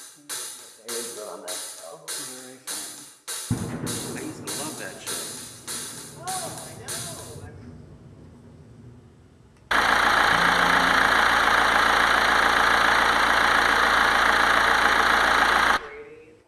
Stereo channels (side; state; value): both; identical; correlation 1.00